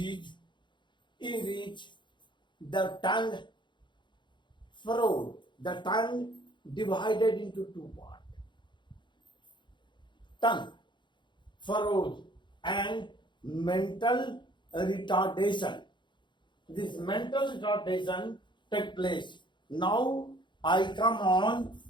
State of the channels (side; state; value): right; late; 0.23 ms